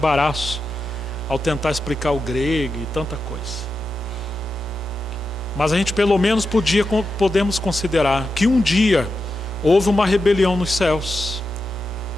ao tentar explicar o grego e tanta coisa. Mas a gente pelo menos podemos considerar que um dia houve uma rebelião nos céus,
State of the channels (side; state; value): both; normal; correlation 0.89